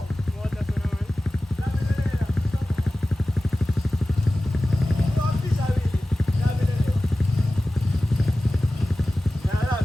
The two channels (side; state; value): both; normal; correlation 0.96